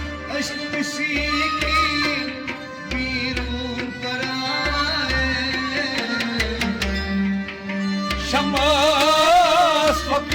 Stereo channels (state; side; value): identical; both; correlation 1.00